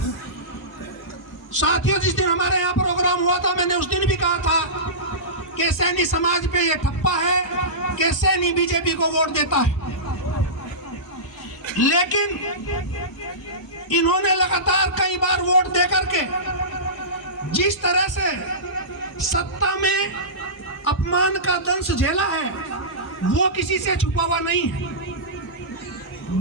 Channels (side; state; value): both; normal; correlation -0.20